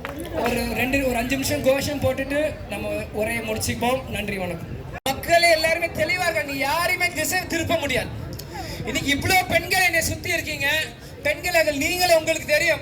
ஒரு 5 நிமிஷம் கோஷம் போட்டுட்டு நம்ம உரையை முடிச்சுப்போம். நன்றி, வணக்கம். மக்களே எல்லாருமே தெளிவாக, நீ யாரையுமே திசை திருப்ப முடியாது. இன்னைக்கு இவ்வளவு பெண்கள் என்னை சுத்தி இருக்கீங்க. பெண்கள் நீங்களும் உங்களுக்கு தெரியும்.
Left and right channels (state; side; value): identical; both; correlation 1.00